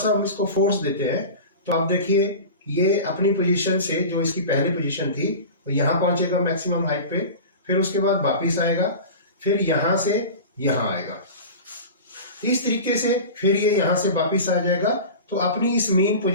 हम इसको फोर्स देते हैं तो आप देखिए ये अपनी पोजीशन से, जो इसकी पहली पोजीशन थी, तो यहाँ पहुंचेगा मैक्सिमम हाइट पे, फिर उसके बाद वापिस आएगा, फिर यहां से यहां आएगा, इस तरीके से फिर ये यहां से वापिस आ जाएगा। तो अपनी इस मेन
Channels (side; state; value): both; inverted; correlation -0.32